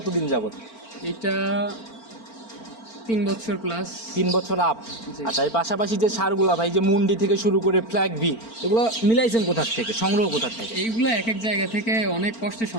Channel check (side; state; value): right; late; 4.4 ms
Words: যাবত? এটা 3 বছর প্লাস। 3 বছর আপ। জি। আচ্ছা, এর পাশাপাশি যে সারগুলা ভাই, যে মুন্ডি থেকে শুরু করে ফ্ল্যাগ বি, এগুলো মিলাইছেন কোথা থেকে, সংগ্রহ কোথা থেকে? এইগুলা এক এক জায়গা থেকে অনেক কষ্টে